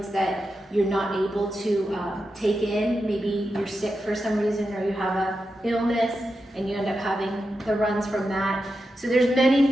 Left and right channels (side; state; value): both; normal; correlation 0.89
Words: that you're not able to take in. Maybe you're sick for some reason, or you have an illness and you end up having the runs from that. So there's many